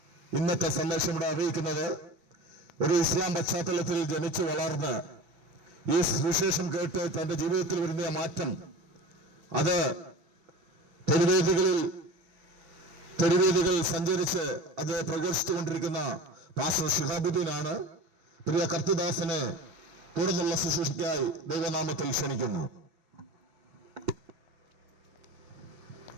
ഇന്നത്തെ സന്ദേശം ഇവിടെ അറിയിക്കുന്നത് ഒരു ഇസ്ലാം പശ്ചാത്തലത്തിൽ ജനിച്ചു വളർന്ന് ഈ സുവിശേഷം കേട്ട് തന്റെ ജീവിതത്തിൽ വരുന്ന മാറ്റം അത് തെരുവേദികളിൽ സഞ്ചരിച്ച് അത് പ്രഘോഷിച്ചുകൊണ്ടിരിക്കുന്ന പാസ്റ്റർ ഷിഹാബുദ്ദീനാണ്. പ്രിയ കർത്തിദാസനെ തുടർന്നുള്ള ശുശ്രൂഷയ്ക്കായി ദൈവനാമത്തിൽ ക്ഷണിക്കുന്നു.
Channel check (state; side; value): late; left; 6.0 ms